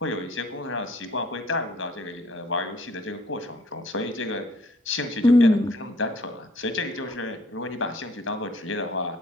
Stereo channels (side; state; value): both; normal; correlation 0.57